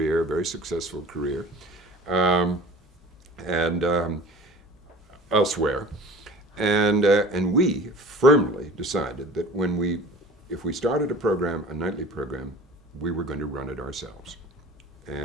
very successful career, and elsewhere. And we firmly decided that if we started a program, a nightly program, we were going to run it ourselves.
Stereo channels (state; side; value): normal; both; correlation 0.42